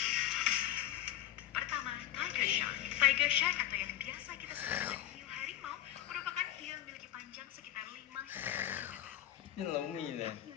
Pertama, Tiger Shark. Tiger Shark atau yang biasa kita sebut dengan hiu harimau merupakan hiu yang memiliki panjang sekitar 5 hingga 7 meter. Ini Hiu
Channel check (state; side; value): quieter; right; 12.9 dB